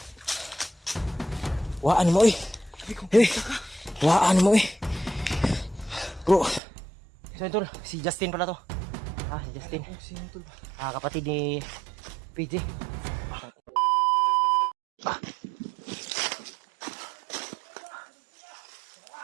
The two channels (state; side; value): drops out; left; at 6.6 s